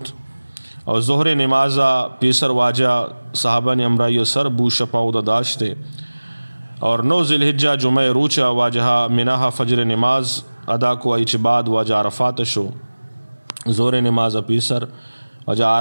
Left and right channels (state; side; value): inverted; both; correlation -1.00